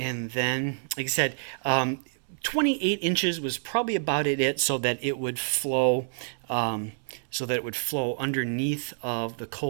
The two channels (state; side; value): silent; left; 60 dB below the other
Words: then, like I said, 28 inches was probably about it, so that it would flow underneath of the